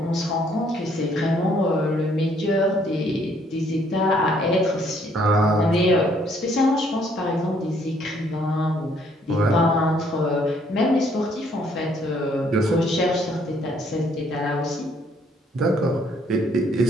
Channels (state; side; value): normal; both; correlation 0.65